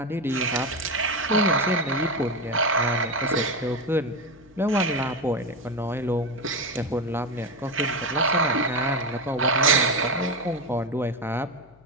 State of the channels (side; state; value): left; noise; hum, 27 dB below the sound